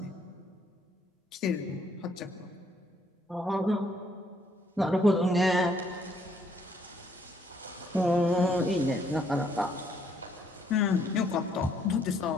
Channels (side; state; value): both; normal; correlation 0.68